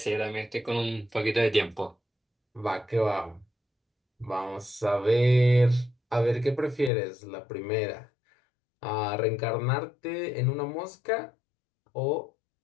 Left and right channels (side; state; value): right; drops out; at 6.9 s